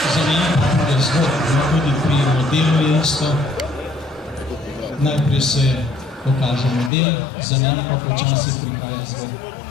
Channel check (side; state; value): right; drops out; at 6.9 s